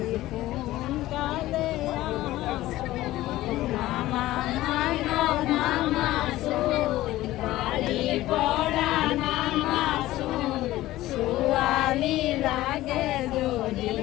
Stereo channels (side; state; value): right; quieter; 16.2 dB